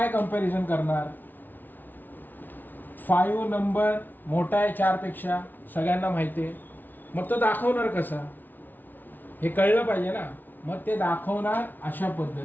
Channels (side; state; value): right; late; 0.087 ms